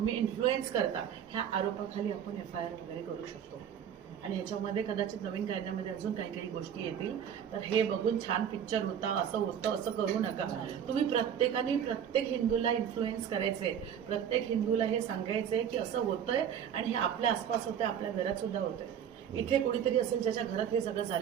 इन्फ्लुएन्स करता, ह्या आरोपाखाली आपण FIR वगैरे करू शकतो। आणि ह्याच्यामध्ये कदाचित नवीन कायद्यामध्ये अजून काही काही गोष्टी येतील। तर हे बघून छान पिक्चर होता, असं होतं, असं करू नका। तुम्ही प्रत्येकाने प्रत्येक हिंदूला इन्फ्लुएन्स करायचे, प्रत्येक हिंदूला हे सांगायचे की असं होतंय आणि हे आपल्या आसपास होतंय, आपल्या घरात सुद्धा होतंय। इथे कोणीतरी असेल ज्याच्या घरात हे सगळं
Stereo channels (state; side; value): quieter; left; 8.8 dB